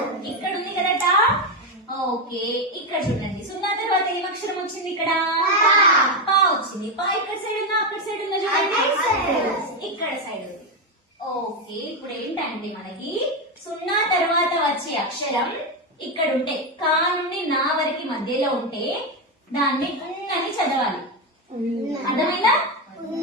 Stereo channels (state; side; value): normal; both; correlation 0.09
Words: ఇక్కడ ఉంది కదా టా. ఓకే, ఇక్కడ చూడండి సున్నా తర్వాత ఏం అక్షరం వచ్చింది? ఇక్కడ పా వచ్చింది. పా ఇక్కడ సైడ్ ఉందా అక్కడ సైడ్ ఉందా చూడండి, ఇక్కడ సైడ్ ఉంది. ఓకే, ఇప్పుడు ఏంటంటే మనకి సున్నా తర్వాత వచ్చే అక్షరం ఇక్కడ ఉంటే, కా నుండి నా వరకు మధ్యలో ఉంటే దాన్ని అని చదవాలి. అర్థమైందా?